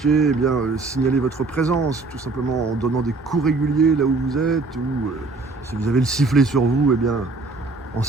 eh bien, signalez votre présence, tout simplement en donnant des coups réguliers là où vous êtes, ou si vous avez le sifflet sur vous, eh bien, en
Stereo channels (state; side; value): quieter; left; 3.7 dB